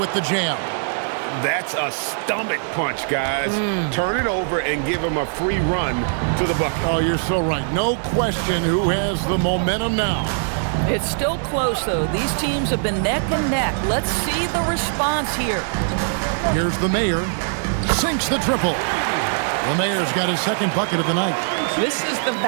the jam. That's a stomach punch, guys. Turn it over and give him a free run to the bucket. Oh, you're so right. No question who has the momentum now. It's still close, though. These teams have been neck and neck. Let's see the response here. Here's the Mayor. Sinks the triple. The Mayor's got his second bucket of the night. This is the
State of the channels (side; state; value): left; silent; digital silence